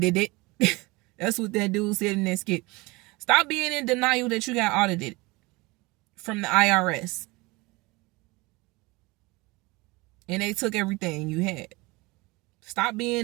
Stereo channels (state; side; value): quieter; left; 23.7 dB